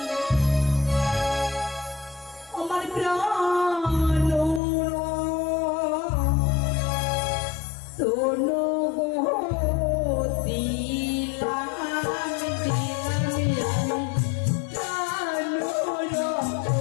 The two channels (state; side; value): drops out; right; at 4.6 s